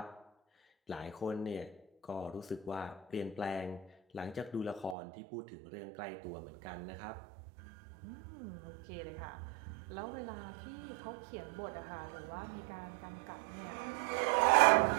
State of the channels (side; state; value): left; drops out; at 5.0 s